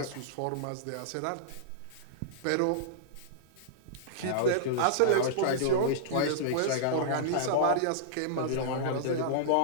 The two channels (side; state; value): both; different; correlation -0.02